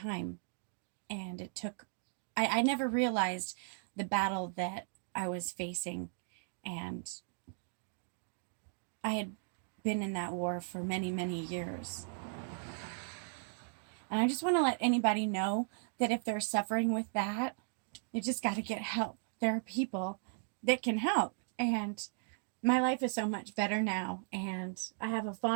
And it took, I never realized the battle that I was facing. And I had been in that war for many, many years. And I just want to let anybody know that if they're suffering with that, you just got to get help. There are people that can help. And my life is so much better now. And I have a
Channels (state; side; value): silent; left; 53 dB below the other